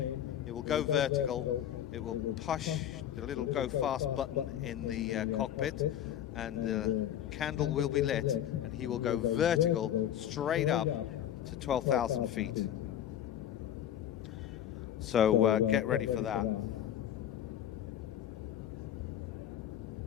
it will go vertical, it will push the little go fast button in the cockpit, and the candle will be lit, and he will go vertical straight up to 12,000 feet. So get ready for that.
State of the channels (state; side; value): quieter; right; 10.7 dB